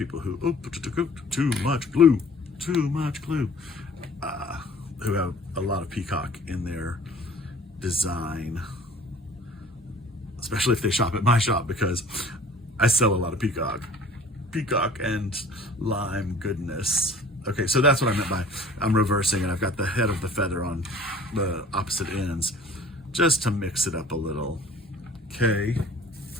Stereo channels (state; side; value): normal; both; correlation 0.48